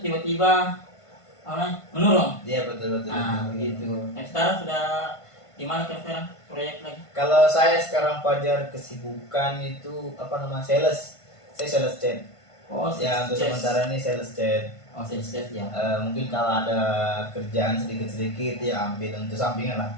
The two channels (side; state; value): right; late; 1.5 ms